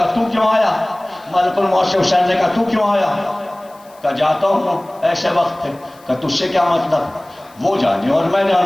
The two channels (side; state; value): left; noise; hiss, 28 dB below the sound